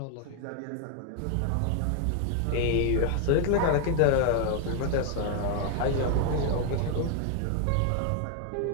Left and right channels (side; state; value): both; different; correlation 0.00